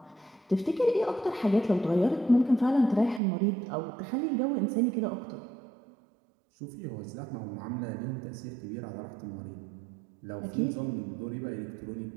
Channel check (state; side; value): drops out; left; at 3.2 s